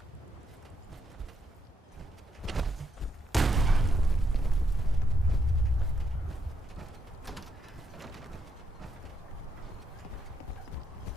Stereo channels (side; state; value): both; normal; correlation 0.79